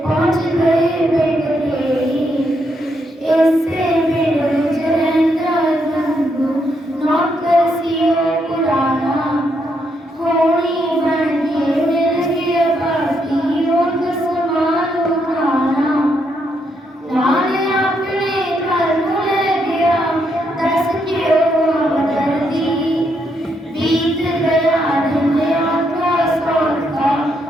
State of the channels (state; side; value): normal; both; correlation 0.77